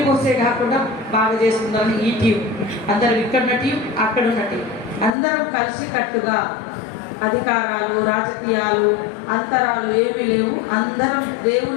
పోసే కాకుండా బాగా చేసుకుందామని ఈ టీం అందరం ఇక్కడున్న టీం అక్కడున్న టీం అందరం కలిసి కట్టుగా అధికారాలు రాజకీయాలు అంతరాలు ఏమీ లేవు. అందరం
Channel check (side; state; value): right; drops out; at 5.1 s